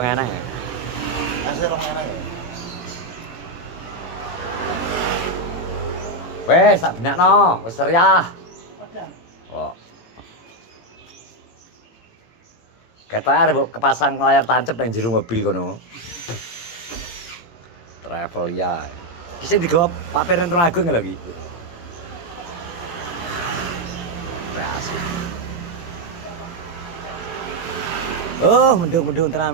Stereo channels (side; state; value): right; late; 17 ms